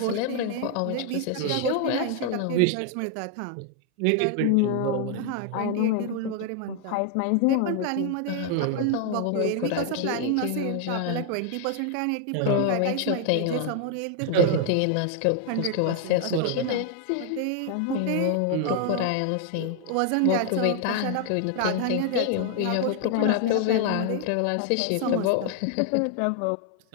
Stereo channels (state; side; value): different; both; correlation 0.00